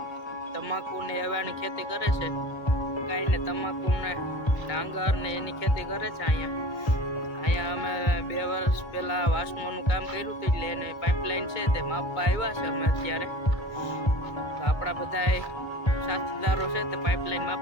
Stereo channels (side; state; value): right; late; 1.3 ms